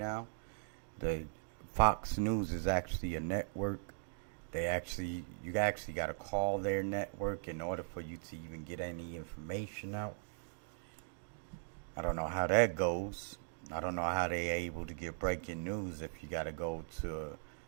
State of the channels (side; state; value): left; silent; digital silence